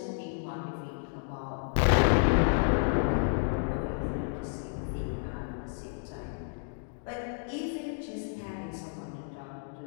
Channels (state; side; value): silent; right; digital silence